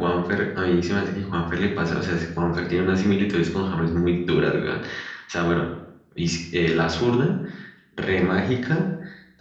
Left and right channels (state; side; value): identical; both; correlation 1.00